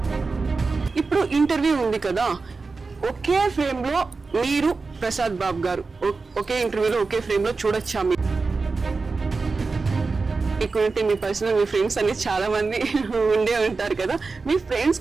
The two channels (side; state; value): left; quieter; 4.1 dB